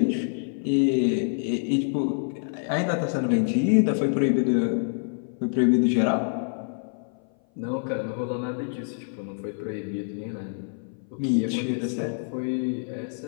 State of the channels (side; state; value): right; silent; 57 dB below the other